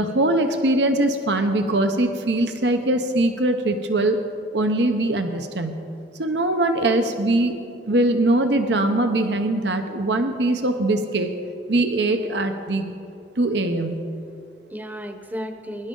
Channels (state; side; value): normal; both; correlation 0.45